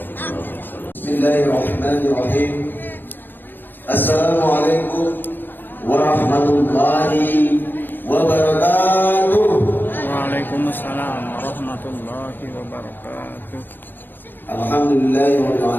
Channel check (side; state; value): right; late; 0.093 ms